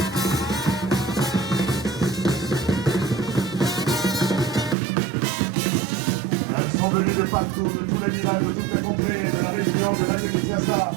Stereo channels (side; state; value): left; drops out; at 4.8 s